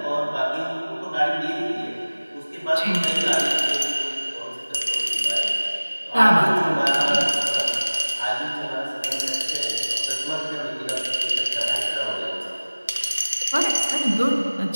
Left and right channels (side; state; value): both; inverted; correlation -1.00